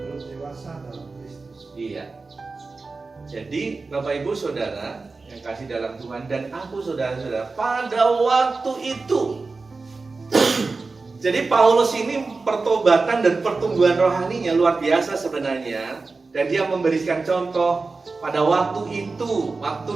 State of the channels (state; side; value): quieter; left; 3.9 dB